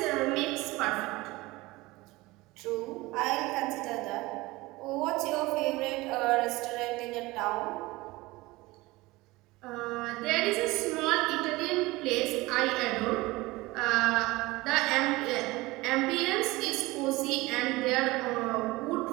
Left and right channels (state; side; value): quieter; left; 21.0 dB